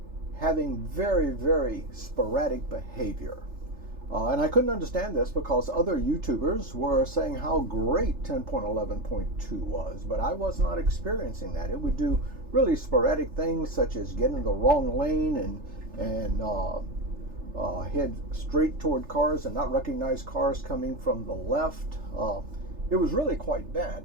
having very, very sporadic behavior. And I couldn't understand this because other YouTubers were saying how great 10.11.2 was, but I was not experiencing that. It would do really sporadic things such as get in the wrong lane and head straight toward cars and not recognize cars coming from the left. It was really quite bad.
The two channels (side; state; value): left; late; 3.4 ms